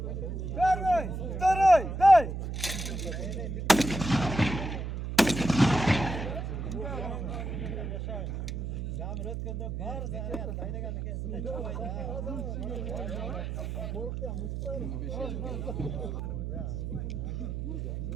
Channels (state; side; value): noise; right; hum, 4 dB below the sound